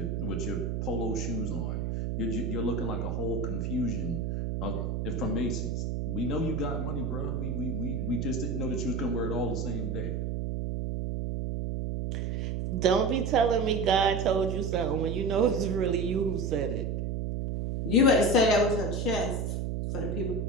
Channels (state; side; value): noise; right; hum, 1 dB below the sound